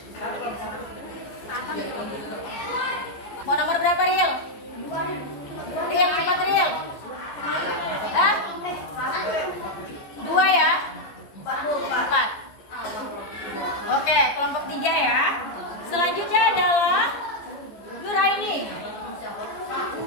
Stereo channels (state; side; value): late; right; 15 ms